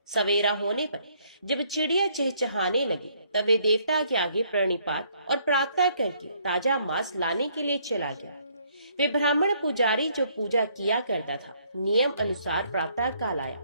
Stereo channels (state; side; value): inverted; both; correlation -0.66